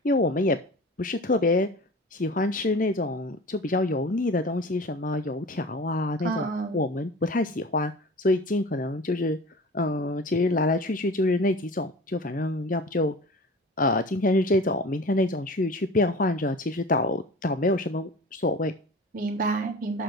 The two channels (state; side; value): normal; both; correlation 0.38